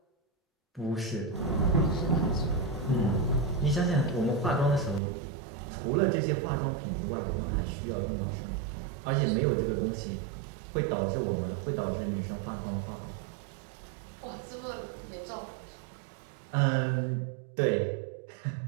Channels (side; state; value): left; drops out; at 5.0 s